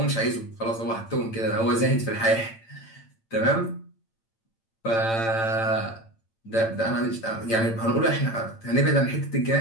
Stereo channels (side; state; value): right; late; 8.9 ms